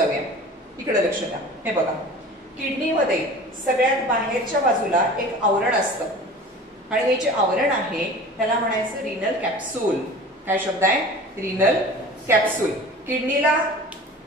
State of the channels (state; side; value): normal; both; correlation 0.40